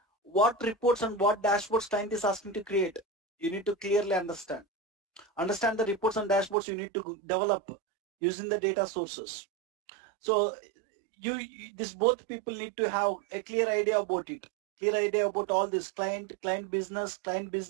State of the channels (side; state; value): left; drops out; at 6.6 s